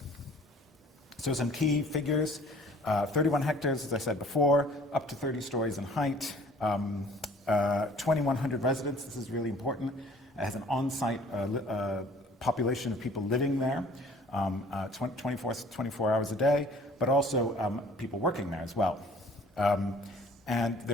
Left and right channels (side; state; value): both; normal; correlation 0.52